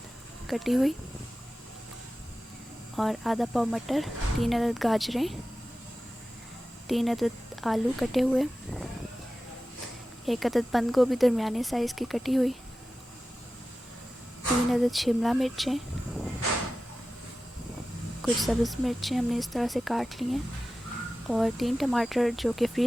कटी हुई, और आधा पाव मटर, 3 अदद गाजरें, 3 अदद आलू कटे हुए, 1 अदद बंद गोभी दरमियाने साइज़ की कटी हुई, 3 अदद शिमला मिर्चें, कुछ सब्ज़ मिर्चें हमने इस तरह से काट ली हैं, और 3 टमाटर जो कि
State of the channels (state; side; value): normal; both; correlation 0.94